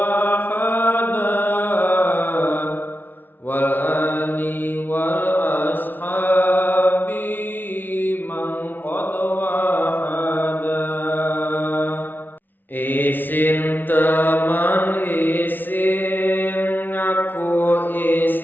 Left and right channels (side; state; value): right; late; 0.089 ms